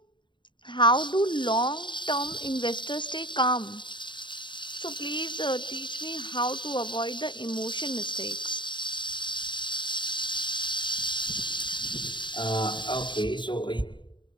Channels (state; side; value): late; right; 0.23 ms